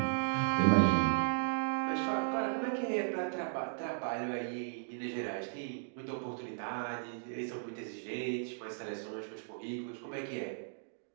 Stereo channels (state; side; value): silent; left; digital silence